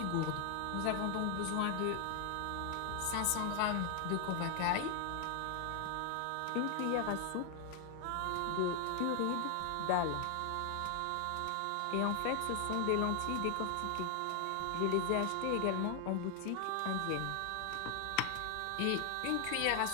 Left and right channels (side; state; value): both; different; correlation 0.00